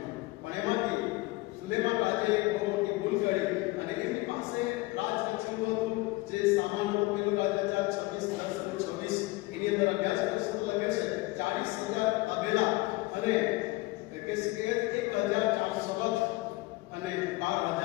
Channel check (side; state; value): right; quieter; 21.5 dB